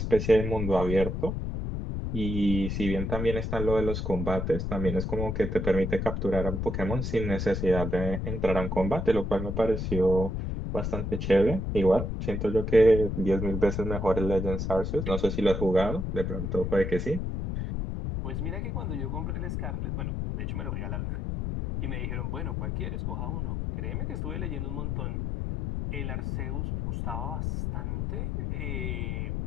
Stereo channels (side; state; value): left; noise; rumble, 2 dB below the sound